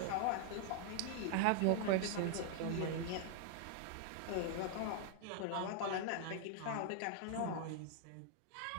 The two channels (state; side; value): different; both; correlation 0.00